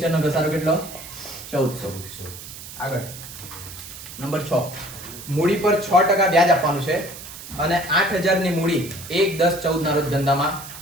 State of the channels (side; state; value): right; noise; hiss, 13 dB below the sound